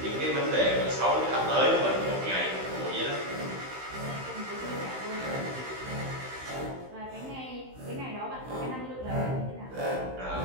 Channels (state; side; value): late; left; 15 ms